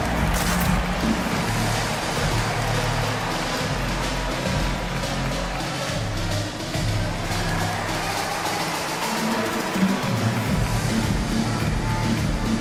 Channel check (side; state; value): both; identical; correlation 1.00